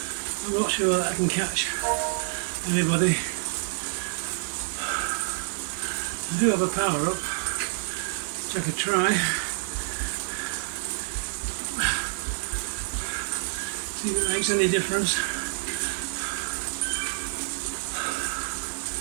I'm not sure that I can catch anybody. I do have a power up, which I could try. See if it makes any difference.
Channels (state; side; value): silent; left; 60 dB below the other